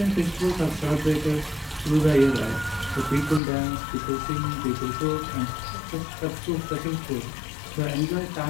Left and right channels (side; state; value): right; drops out; at 3.4 s